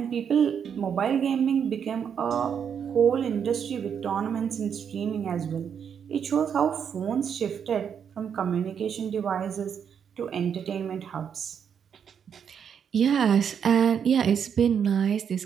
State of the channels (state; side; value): quieter; left; 7.7 dB